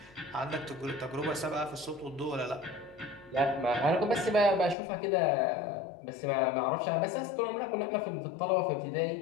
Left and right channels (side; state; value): right; drops out; at 4.8 s